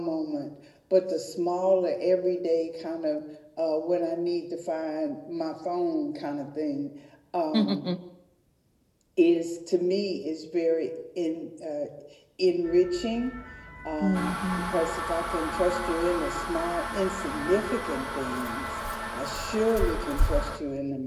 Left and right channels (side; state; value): both; identical; correlation 1.00